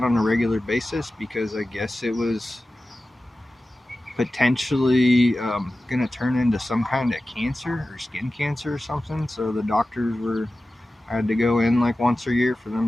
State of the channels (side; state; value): both; normal; correlation 0.95